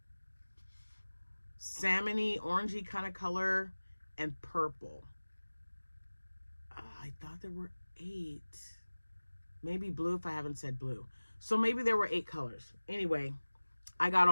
salmony, orangey kind of color, and purple. I thought there were 8. Maybe blue if I haven't said blue. So maybe there were 8 colors. Anyway, I got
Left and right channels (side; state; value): both; inverted; correlation -1.00